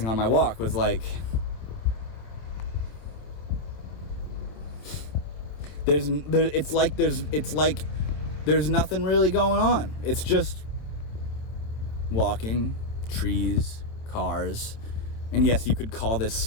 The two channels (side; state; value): right; late; 27 ms